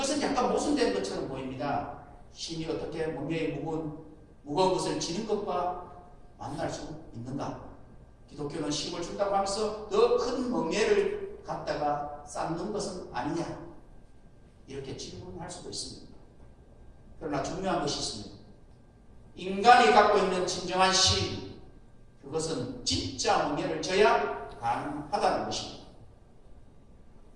약간 모순된 것처럼 보입니다. 쉼이 어떻게 멍에의 무거운 것을 지는 것과 만날 수 있는가? 기독교는 쉼을 준다고 하면서 더 큰 멍에를 갖다가 쌓는 것은 아니냐? 이렇게 질문할 수도 있습니다. 그러나 중요한 것이 있습니다. 인간이 갖고 있는 진정한 쉼, 그것은 진짜 멍에를 져야 가능하다는 것입니다.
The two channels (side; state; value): both; identical; correlation 1.00